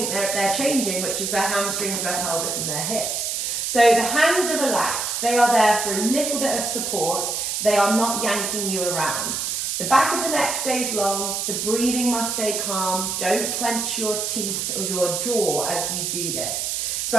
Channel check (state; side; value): noise; right; hiss, 1 dB below the sound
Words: they're changing, which is their hamstrings, their pelvis and their hips. So the hands are relaxed, they are there for a little bit of support, they are not yanking you around. The back of the neck stays long, the breathing must stay calm, don't clench your teeth or your jaw as you do this. So